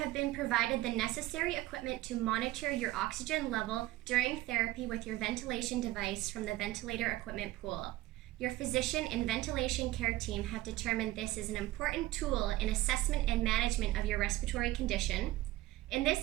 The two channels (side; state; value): left; quieter; 17.0 dB